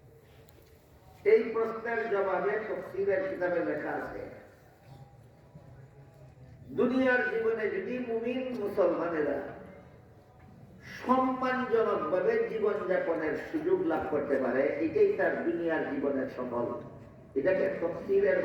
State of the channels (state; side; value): identical; both; correlation 1.00